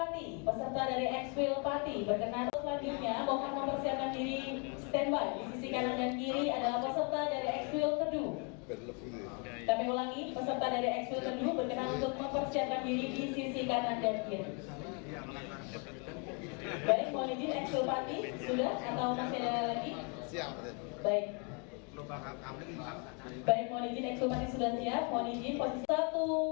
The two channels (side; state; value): right; quieter; 36.3 dB